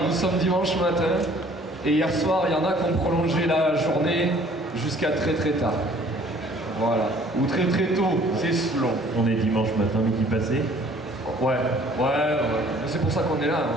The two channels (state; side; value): normal; both; correlation 0.55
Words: nous sommes dimanche matin, et hier soir il y en a qui ont prolongé la journée jusqu'à très très tard. Voilà. Ou très très tôt, c'est selon. On est dimanche matin, midi passé. Ouais. C'est pour ça qu'on est là,